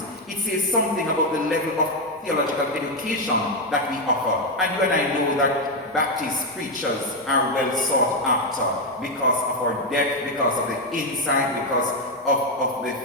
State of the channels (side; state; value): both; normal; correlation 0.05